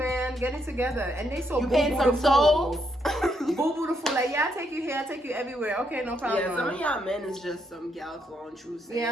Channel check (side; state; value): both; normal; correlation 0.76